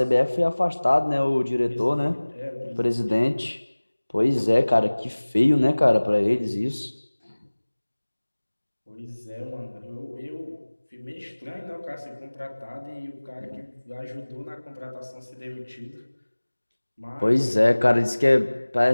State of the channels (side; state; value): both; inverted; correlation -1.00